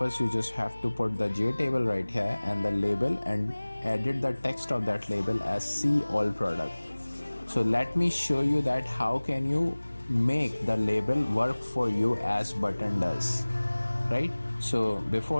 you just have to put the J table right here and the label, and edit the text of that label as see all product. So let me show you that how can you make the label work for you as button does, right? So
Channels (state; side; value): inverted; both; correlation -1.00